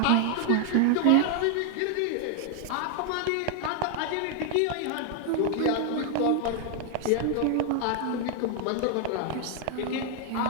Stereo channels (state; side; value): different; both; correlation 0.00